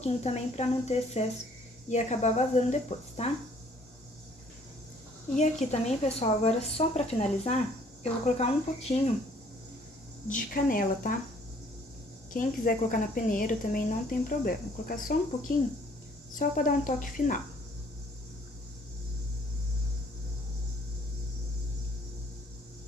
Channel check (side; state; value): both; normal; correlation 0.60